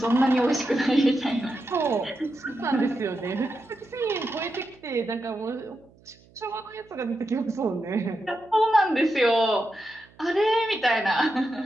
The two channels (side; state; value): right; noise; hum, 28 dB below the sound